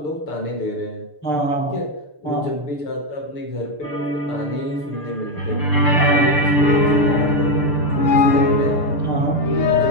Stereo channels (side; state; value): right; late; 6.8 ms